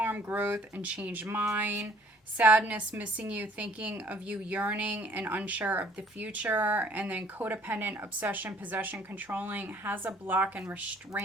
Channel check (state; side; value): normal; both; correlation 0.57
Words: growth, and change mind. Sadness, missing you, thinking of you, yearning, and unsure of the future. And then codependent, obsession, possession, controlling, has a block and